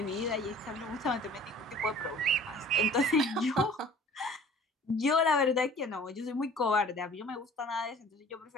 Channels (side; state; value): both; normal; correlation 0.48